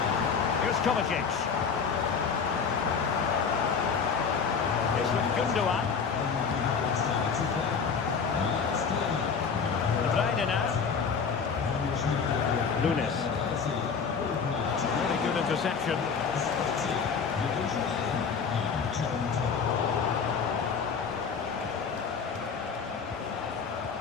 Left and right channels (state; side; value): quieter; right; 6.0 dB